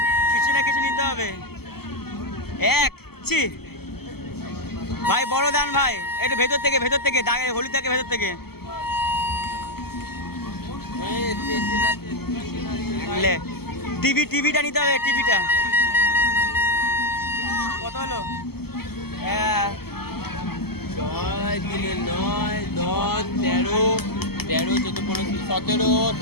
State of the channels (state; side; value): late; right; 0.96 ms